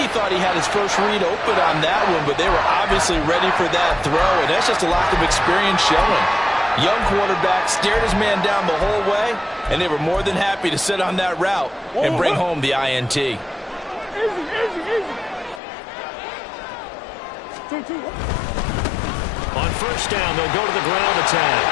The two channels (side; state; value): right; drops out; at 15.6 s